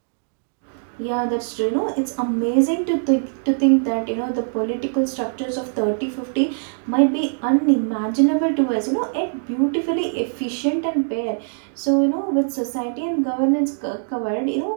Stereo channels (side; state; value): left; silent; digital silence